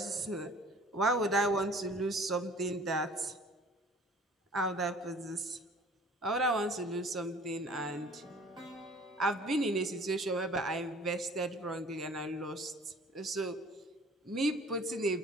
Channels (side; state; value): both; normal; correlation 0.50